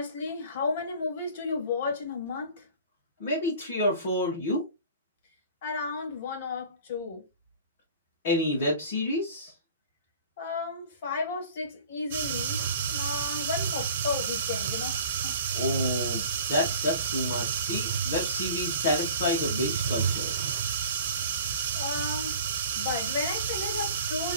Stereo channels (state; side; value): inverted; both; correlation -0.44